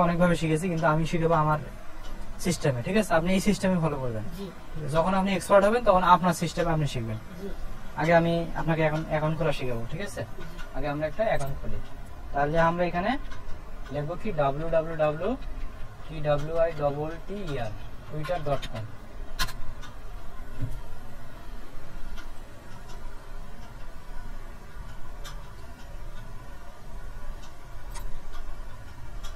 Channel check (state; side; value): identical; both; correlation 1.00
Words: অনেকভাবে শিখেছি, কিন্তু আমি শিখাবো আমার সিস্টেমে। ঠিক আছে, আপনি এই সিস্টেমে ফলো করবেন। যখন আপনি এক্সপার্ট হবেন তখন আপনার সিস্টেমে আপনি শিখবেন। আগে আমি আপনাকে এখন অ্যাকাউন্ট খোলা শিখাবো। ঠিক আছে, আগে আমরা একটা অ্যাকাউন্ট খুলি। তাহলে আমরা এখানে লিখবো কি www.twitter.com twitter.com।